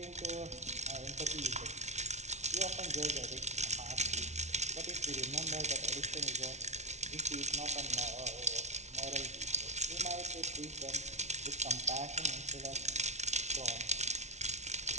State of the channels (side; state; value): left; late; 0.32 ms